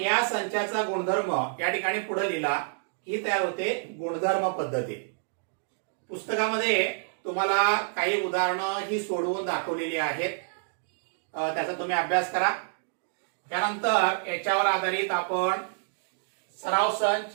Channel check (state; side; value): silent; left; digital silence